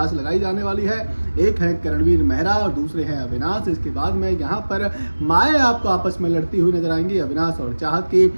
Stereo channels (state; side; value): inverted; both; correlation -1.00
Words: लगाई जाने वाली है। एक है करणवीर मेहरा और दूसरे हैं अविनाश। इसके बाद में यहाँ पर माए आपको आपस में लड़ती हुई नजर आएंगी, अविनाश और चाहत की।